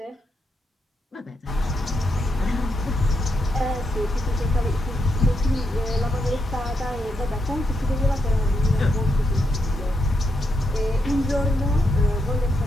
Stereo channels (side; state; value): both; normal; correlation 0.82